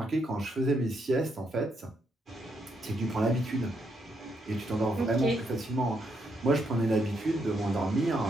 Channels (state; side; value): normal; both; correlation 0.77